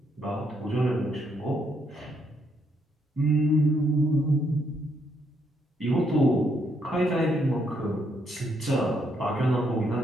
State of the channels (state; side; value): normal; both; correlation 0.74